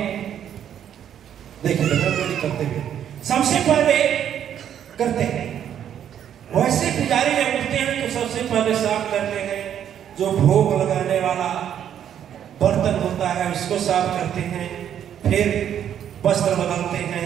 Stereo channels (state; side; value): quieter; left; 9.7 dB